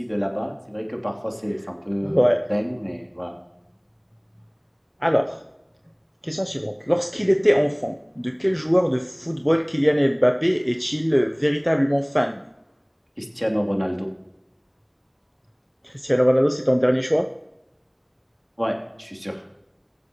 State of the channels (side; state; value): both; identical; correlation 1.00